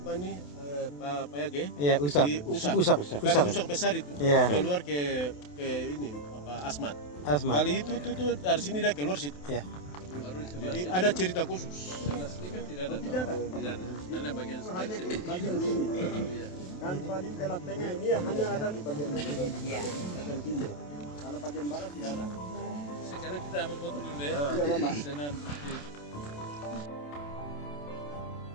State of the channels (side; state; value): right; late; 28 ms